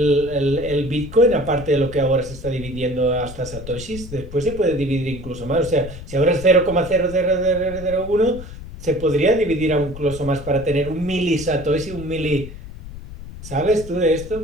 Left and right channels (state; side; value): noise; left; rumble, 13 dB below the sound